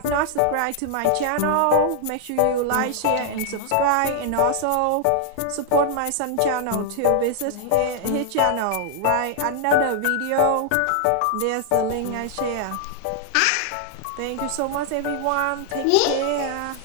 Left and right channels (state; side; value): different; both; correlation 0.00